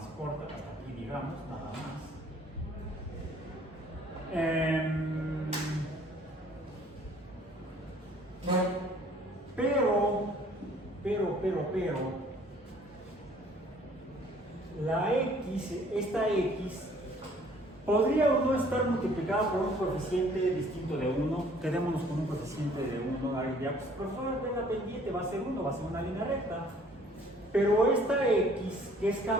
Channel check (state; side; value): normal; both; correlation 0.57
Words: corta, hasta aquí digamos, nada más. Pero, la x, esta x, podría o no estar multiplicada por un coeficiente distinto de 1. Quedémonos con un coeficiente de 1. Ahí ya, pues, profesor, de la pendiente va a ser 1, va a ser una línea recta. Pero esta x, que es